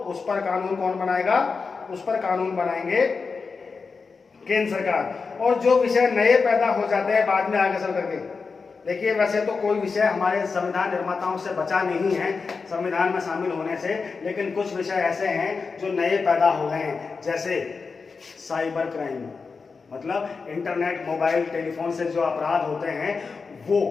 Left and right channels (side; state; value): right; quieter; 4.8 dB